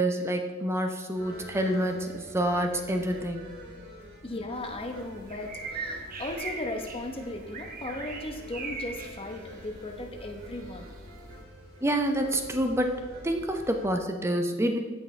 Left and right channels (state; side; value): normal; both; correlation 0.59